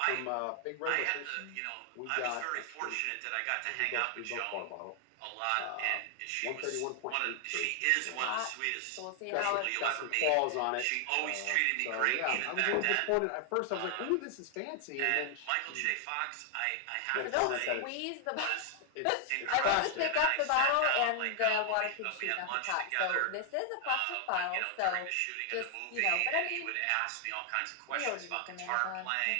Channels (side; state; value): both; different; correlation 0.00